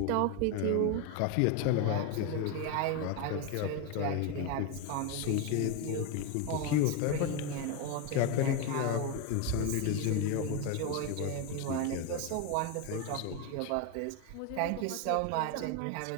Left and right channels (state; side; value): different; both; correlation 0.02